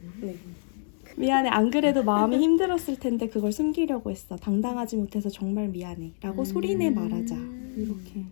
네. 미안해, 안 그래도 마음이 힘들었을 텐데 그걸 숨기려고 했어. 당당하지 못해서 정말 미안해 라고 소리내 말하자. 이렇게.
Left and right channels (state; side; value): silent; right; 60 dB below the other